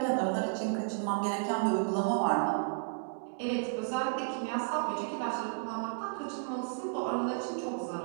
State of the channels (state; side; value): silent; left; digital silence